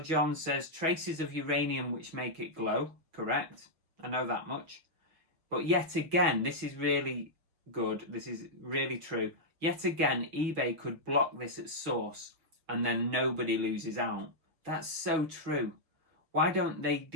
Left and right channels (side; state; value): left; late; 6.2 ms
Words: John says, traces of uranium which make it glow. Correct. I know that much. But yet again, this is really good. This is really true. Yet again, eBay could block this at source and then nobody loses out. That's so true. Why don't they